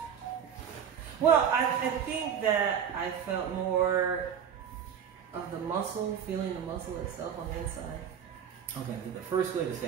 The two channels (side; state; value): left; quieter; 8.1 dB